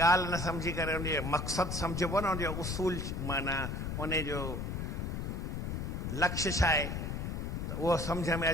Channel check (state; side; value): noise; left; rumble, 3 dB below the sound